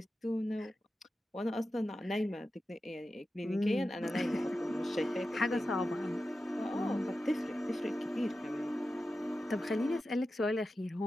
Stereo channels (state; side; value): normal; both; correlation 0.92